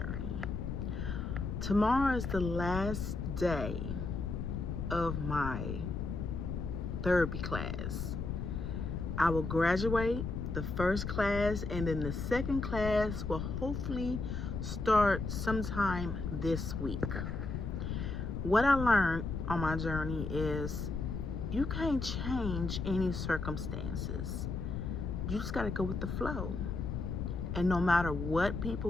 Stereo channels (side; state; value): left; noise; rumble, 3 dB below the sound